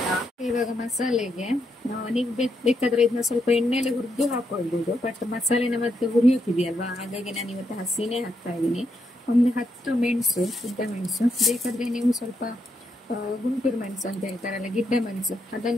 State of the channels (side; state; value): both; normal; correlation 0.80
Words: ಇವಾಗ ಮಸಾಲೆಗೆ ನೀವು ಬೇಕಾದ್ರೆ ಇದನ್ನ ಸ್ವಲ್ಪ ಎಣ್ಣೆಲೆ ಹುರಿದು ಹಾಕೊಳ್ಬಹುದು. ಬಟ್ ಮಸಾಲೆನ ಮತ್ತೆ ಹುರಿಯೋಕಿದೆಯಲ್ವಾ, ಹಾಗಾಗಿ ನಾನು ಇವತ್ತು ಹಸಿನೇ ಹಾಕ್ತಾ ಇದ್ದೀನಿ. ಒಂದು 10 ಮೆಣಸು, ಉದ್ದ ಮೆಣಸು. ಬೇಕಾದ್ರೆ ನೀವು ಸ್ವಲ್ಪ ಗುಂಟೂರು ಮೆಣಸು ಅಂತ ಹೇಳ್ತಾರಲ್ಲ, ಗಿಡ್ಡ ಮೆಣಸು,